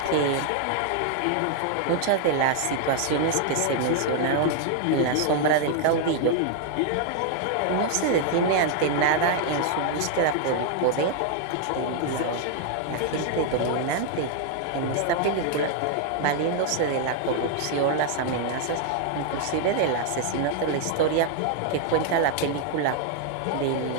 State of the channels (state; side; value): different; both; correlation 0.00